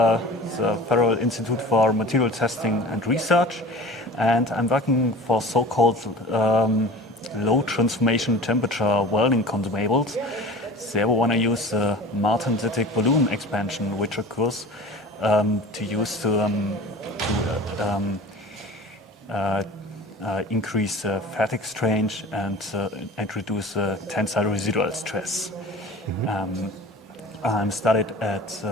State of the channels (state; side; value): normal; both; correlation 0.39